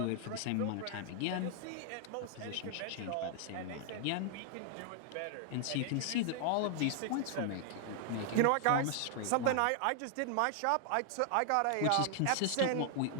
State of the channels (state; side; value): different; both; correlation 0.00